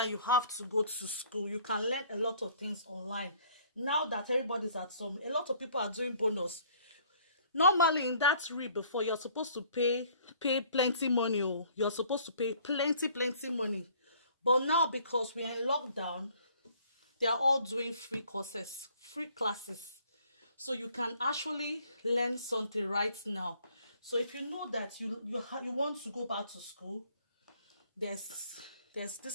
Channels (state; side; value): inverted; both; correlation -0.58